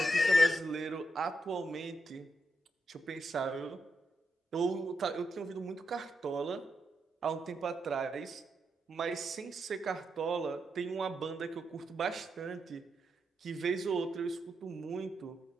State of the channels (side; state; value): both; normal; correlation 0.83